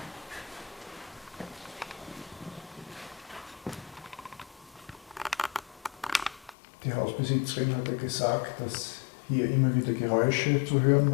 Die Hausbesitzerin hat ja gesagt, dass hier immer wieder Geräusche zu hören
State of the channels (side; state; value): right; drops out; at 6.6 s